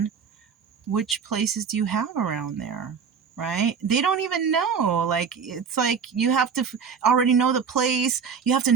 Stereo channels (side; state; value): left; quieter; 6.4 dB